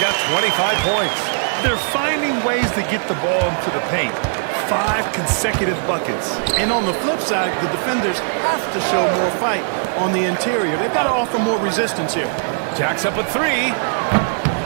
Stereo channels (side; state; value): left; silent; 66 dB below the other